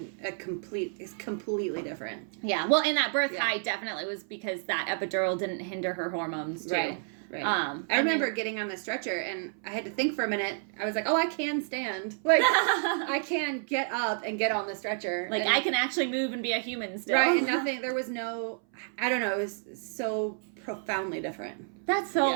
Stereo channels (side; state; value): left; silent; 58 dB below the other